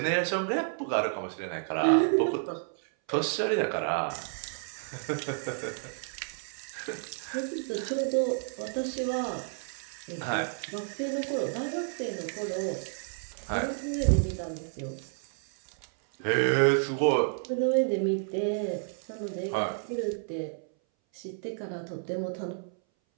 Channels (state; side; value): silent; left; 57 dB below the other